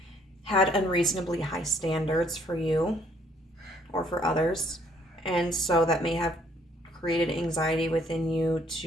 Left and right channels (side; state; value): both; normal; correlation 0.64